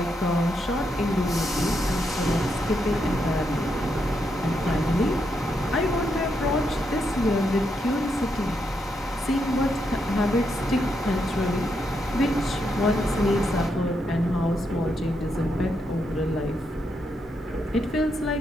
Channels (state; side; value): normal; both; correlation 0.81